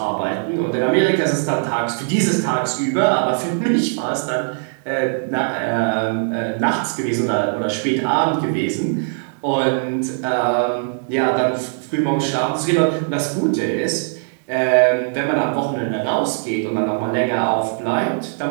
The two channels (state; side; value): silent; left; digital silence